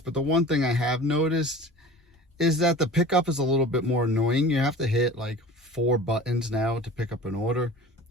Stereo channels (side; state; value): both; normal; correlation 0.39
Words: the one thing I have noticed is that the pickup is a little bit more annoying. You have to hit like 4 buttons now to pick up an order.